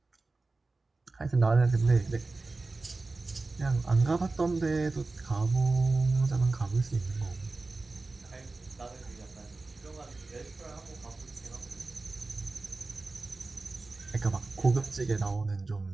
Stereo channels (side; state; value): left; quieter; 3.5 dB